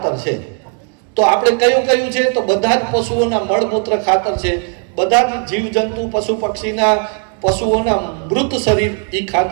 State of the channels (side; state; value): left; quieter; 38.6 dB